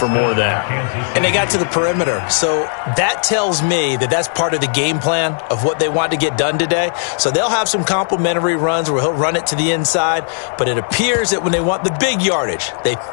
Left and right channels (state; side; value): silent; right; digital silence